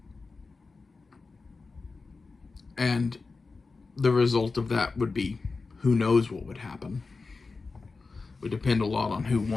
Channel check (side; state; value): right; quieter; 4.1 dB